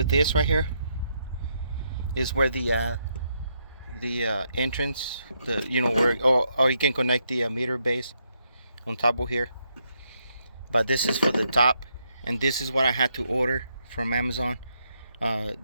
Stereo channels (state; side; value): inverted; both; correlation -0.78